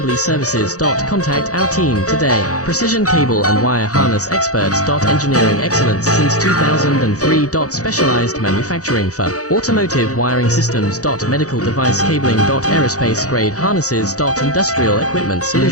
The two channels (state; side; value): late; right; 0.66 ms